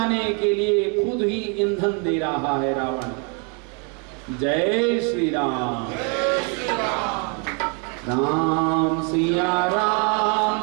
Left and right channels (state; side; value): quieter; left; 36.4 dB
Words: के लिए खुद ही ईंधन दे रहा है रावण। जय श्री राम। राम सिया